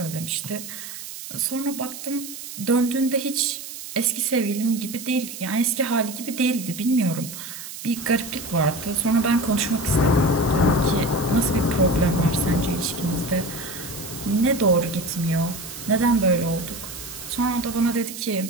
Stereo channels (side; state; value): right; noise; hiss, 11 dB below the sound